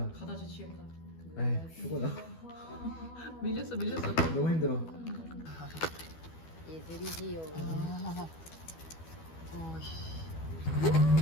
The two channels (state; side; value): late; right; 12 ms